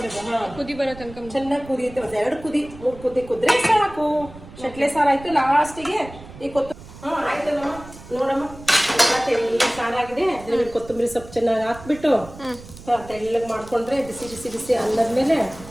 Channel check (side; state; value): right; noise; rumble, 17 dB below the sound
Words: ಹಾಂ. ಕುದಿ ಬರೋ ತನಕ ಚೆನ್ನಾಗಿ ಕುದಿಯುತ್ತೆ. ಒಂದು 2 ಕುದಿ 3 ಕುದಿ ಕುದ್ರೆ ಸಾಕು. ಶೆಟ್ಲೆ ಸಾರು ಆಯ್ತು. ಲಾಸ್ಟಿಗೆ ಈ ಕೊತ್ತಂಬರಿ. ಹಾಂ ಆಯ್ತಲ್ಲಮ್ಮ, ನೋಡಮ್ಮ ತೆಳ್ಳಗೆ ಸಾರಾಗಿದೆ. ಅದ್ರಲ್ಲಿ ಕೊತ್ತಂಬರಿ ಸೊಪ್ಪು ಚೆನ್ನಾಗಿ ಹಾಕ್ಬಿಟ್ಟು ತೆಳ್ಳಗೆ ಮಾಡ್ಕೊಂಡ್ರೆ ಬಿಸಿ ಬಿಸಿ ಬಿಸಿ ಅನ್ನದ ಮೇಲೆ